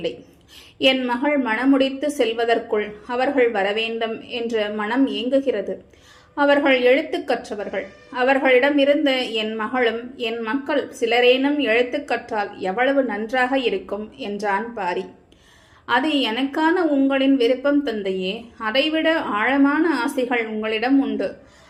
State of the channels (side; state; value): both; identical; correlation 1.00